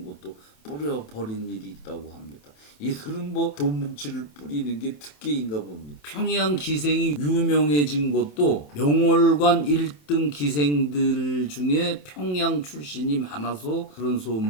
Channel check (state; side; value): late; right; 27 ms